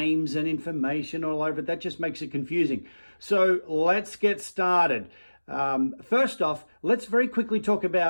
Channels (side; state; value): both; inverted; correlation -1.00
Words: and information all over it. That just makes it confusing. So let's get started. First off, let's very quickly talk